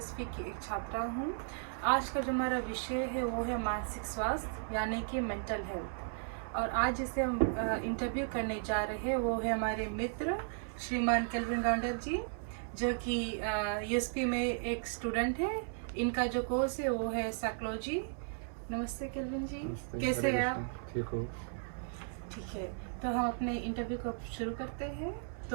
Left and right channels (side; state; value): left; silent; 54 dB below the other